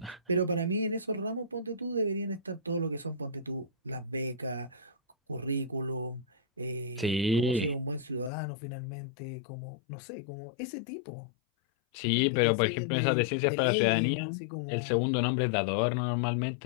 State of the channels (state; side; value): drops out; right; at 8.3 s